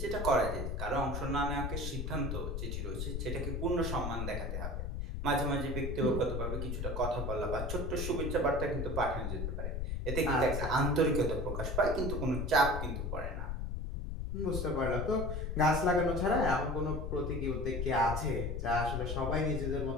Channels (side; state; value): left; noise; rumble, 3 dB below the sound